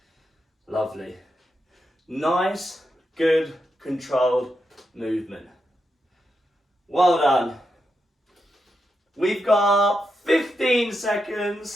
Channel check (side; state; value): both; normal; correlation 0.86